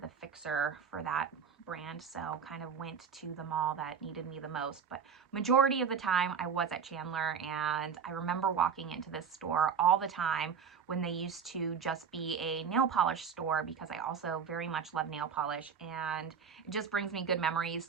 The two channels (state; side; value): quieter; left; 6.8 dB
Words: the fixer for that brand, so kind of went to the mall that needed me the most. But majority of the time I was at Chandler, and I remember walking into this store all the time when they used to just be a nail polish store, because I also very much love nail polish, and it just brings me good memories